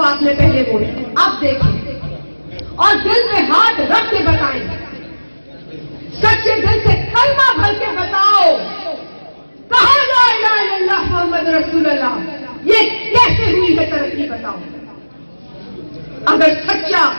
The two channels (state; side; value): inverted; both; correlation -1.00